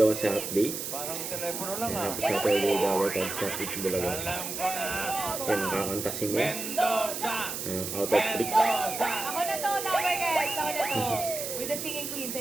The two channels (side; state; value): right; noise; hiss, 5 dB below the sound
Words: update. Parang telepono lang ah. Happy Saturday daw at sa It's Bulaga. Alam ko na. Yan, nakakanta si May. Mendoza! Out of trick. Mendoza! Ako na to, number guys. Ako na to. With the singing queens